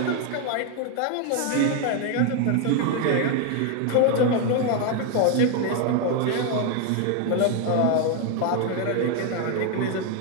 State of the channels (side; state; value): both; different; correlation 0.01